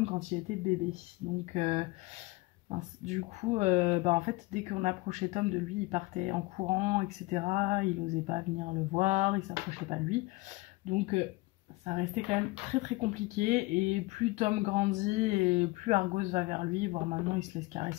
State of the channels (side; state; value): right; quieter; 22.5 dB